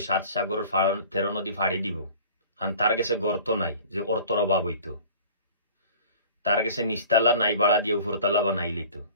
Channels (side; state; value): both; inverted; correlation -0.45